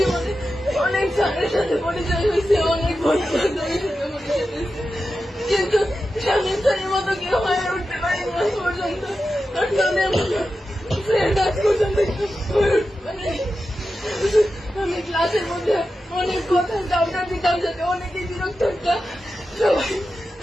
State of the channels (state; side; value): normal; both; correlation 0.91